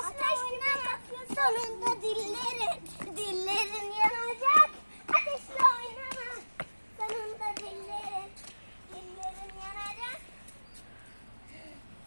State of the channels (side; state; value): both; inverted; correlation -1.00